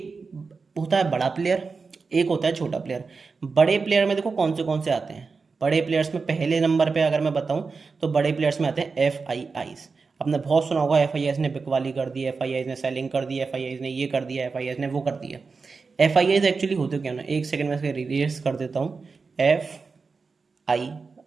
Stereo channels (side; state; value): left; quieter; 4.6 dB